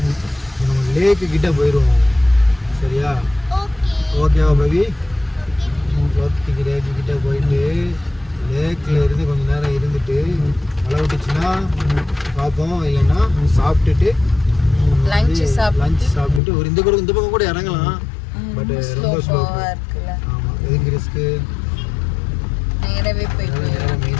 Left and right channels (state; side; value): drops out; right; at 16.4 s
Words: நம்ம லேக்கு கிட்டே போயிடுவோம். சரியா? ஓகேவா பவி? லேக்கு கிட்டே போயிட்டு லேக்கில் இருந்து கொஞ்சம் நேரம் இருந்துட்டு மழை விட்டுச்சுன்னா பார்ப்போம், இல்லைன்னா சாப்பிட்டுட்டு லஞ்ச் சாப்பிட்டுட்டு ஒரு இந்த பக்கம் கூட இறங்கலாம். பட் ரொம்ப ஸ்லோ. ஆமாம், எதுக்கு ரிஸ்க்கு? நேராக